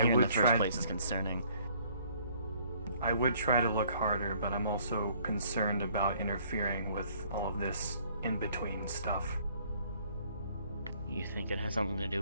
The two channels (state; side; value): inverted; both; correlation -0.60